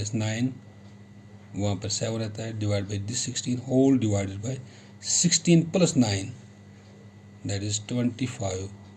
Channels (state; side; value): identical; both; correlation 1.00